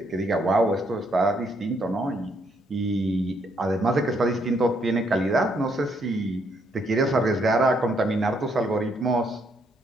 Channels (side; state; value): both; normal; correlation 0.72